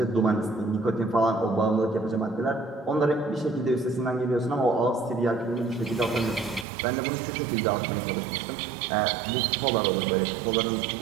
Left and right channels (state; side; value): drops out; left; at 6.7 s